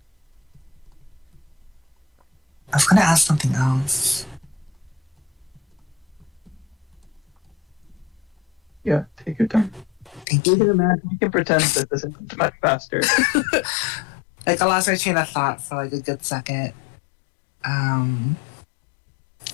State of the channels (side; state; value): right; drops out; at 10.2 s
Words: was gonna ask something else. Yeah, take your time. Thank We you. can imagine. We can pretend that this is much faster. Like, I lost my train of thought for like a good second.